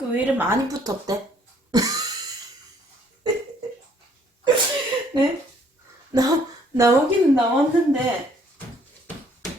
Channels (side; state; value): both; normal; correlation 0.63